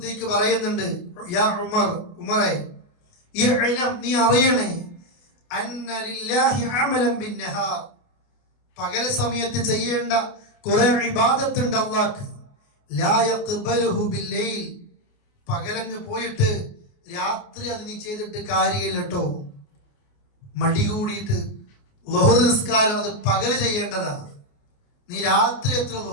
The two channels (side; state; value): right; late; 29 ms